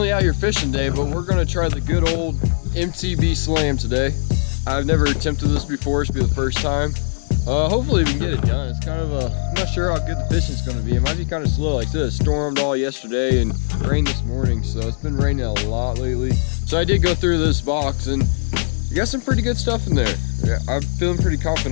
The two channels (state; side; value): silent; right; digital silence